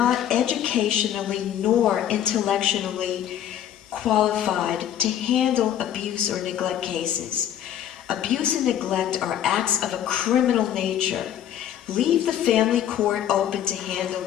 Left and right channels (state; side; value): quieter; right; 10.6 dB